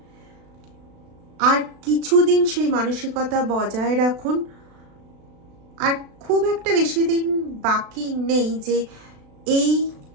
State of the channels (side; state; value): left; late; 36 ms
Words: আর কিছুদিন সেই মানসিকতা বজায় রাখুন। আর খুব একটা বেশি দিন বাকি নেই যে এই